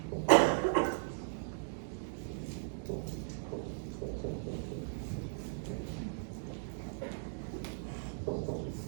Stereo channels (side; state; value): left; silent; digital silence